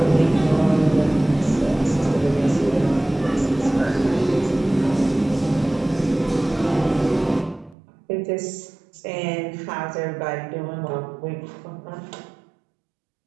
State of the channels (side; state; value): left; drops out; at 7.8 s